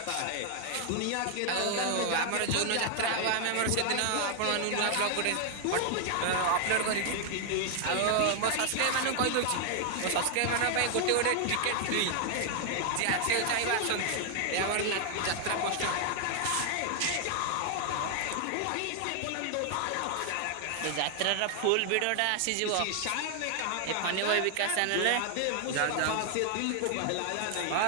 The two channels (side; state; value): both; different; correlation 0.00